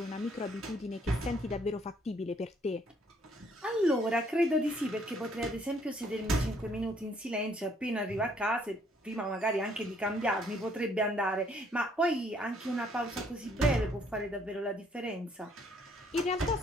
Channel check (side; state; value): both; normal; correlation 0.66